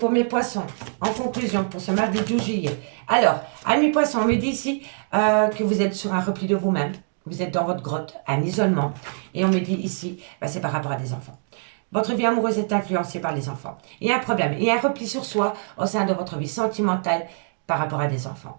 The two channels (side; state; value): left; silent; digital silence